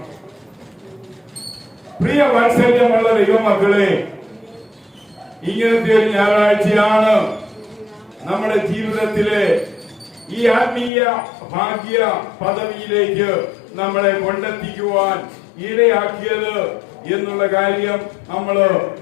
പ്രിയ വാത്സല്യമുള്ള ദൈവമക്കളെ, ഇങ്ങനത്തെ ഒരു ഞായറാഴ്ചയാണ് നമ്മുടെ ജീവിതത്തിലെ ഈ ആത്മീയ ഭാഗ്യ പദവിയിലേക്ക് നമ്മളെ കൊണ്ടെത്തിക്കുവാൻ ഇടയാക്കിയത് എന്നുള്ള കാര്യം നമ്മൾ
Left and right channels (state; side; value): drops out; right; at 10.9 s